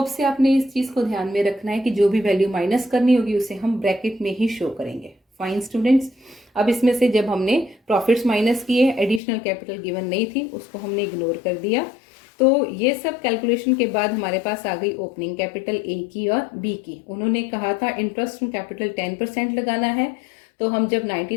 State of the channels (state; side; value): drops out; right; at 9.2 s